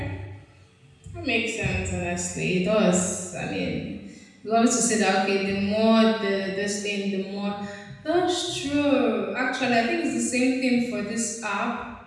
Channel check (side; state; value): both; identical; correlation 1.00